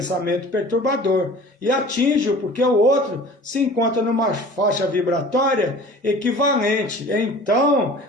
perturbador. E atinge-o porque o outro se encontra numa faixa vibratória equivalente. Então,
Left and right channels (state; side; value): normal; both; correlation 0.43